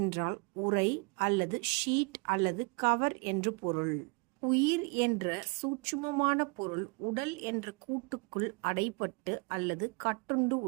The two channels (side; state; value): left; quieter; 31.4 dB